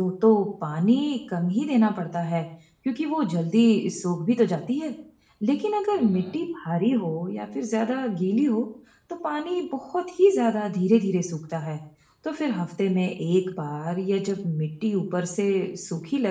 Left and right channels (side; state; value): both; identical; correlation 1.00